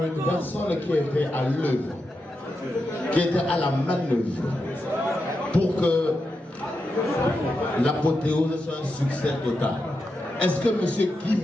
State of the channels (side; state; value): both; normal; correlation 0.87